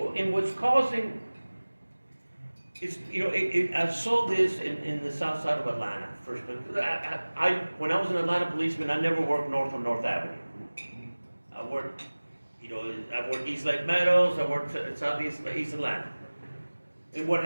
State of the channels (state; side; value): inverted; both; correlation -1.00